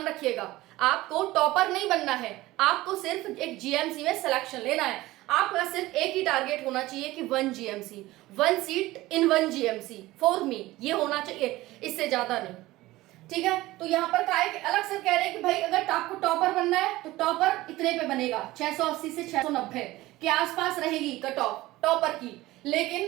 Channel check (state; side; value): quieter; left; 17.9 dB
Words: रखिएगा। आपको टॉपर नहीं बनना है, आपको सिर्फ एक जीएमसी में सिलेक्शन लेना है। आपका सिर्फ एक ही टारगेट होना चाहिए कि 1 GMC, 1 seat in 1 GMC for me, ये होना चाहिए, इससे ज्यादा नहीं। ठीक है, तो यहाँ पर क्या है कि अलग से कह रहे हैं कि भाई अगर आपको टॉपर बनना है तो टॉपर इतने पे बनेगा, 680 से 690 के आसपास रहेगी कट ऑफ टॉपर की।